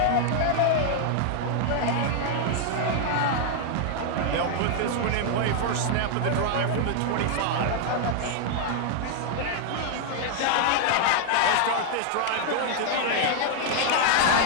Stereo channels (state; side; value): different; both; correlation 0.00